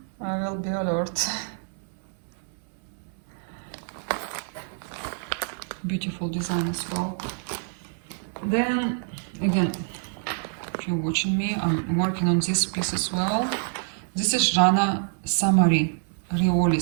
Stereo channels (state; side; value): silent; left; 61 dB below the other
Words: I will be alert. Beautiful design as well. Then, again, if you're watching me, I'm working on this piece as well. This is Jeanne Samari,